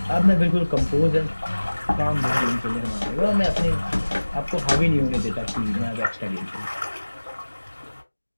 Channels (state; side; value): inverted; both; correlation -1.00